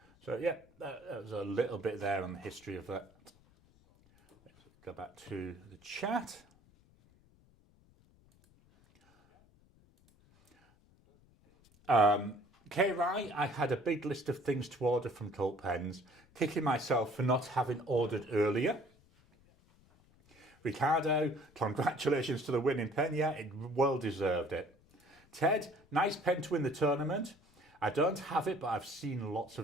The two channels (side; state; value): left; noise; rumble, 30 dB below the sound